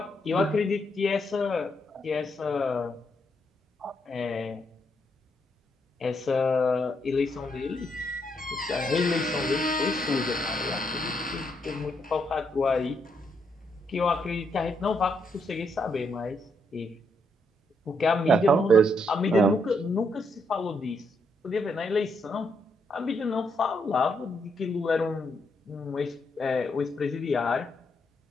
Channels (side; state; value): both; normal; correlation 0.77